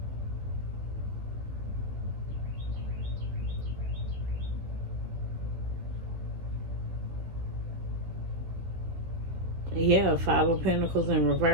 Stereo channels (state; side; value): late; left; 15 ms